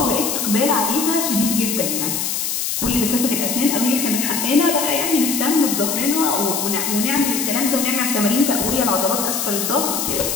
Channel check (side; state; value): left; noise; hiss, 1 dB below the sound